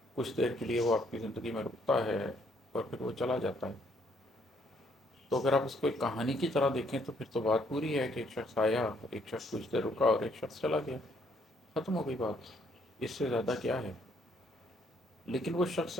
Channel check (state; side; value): normal; both; correlation 0.68